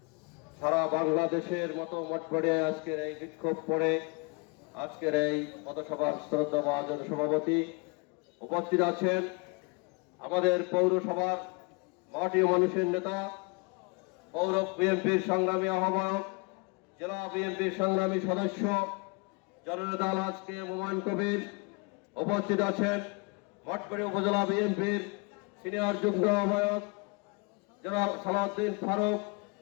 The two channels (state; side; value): quieter; right; 30.2 dB